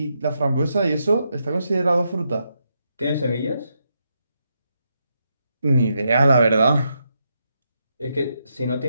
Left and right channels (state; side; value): inverted; both; correlation -0.82